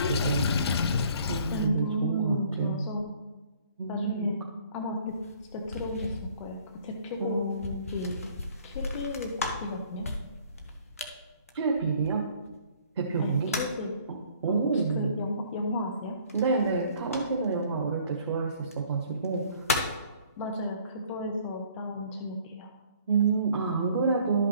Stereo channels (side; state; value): both; inverted; correlation -0.57